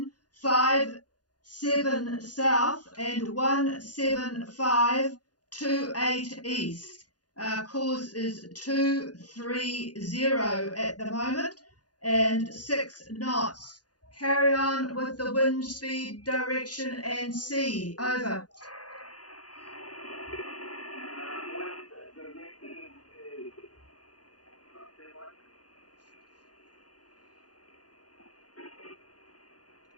south and 17528 east. Course is 230 at the moment and 6 knots. Carry on with the wind speed, direction and sea. Over.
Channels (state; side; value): late; right; 0.69 ms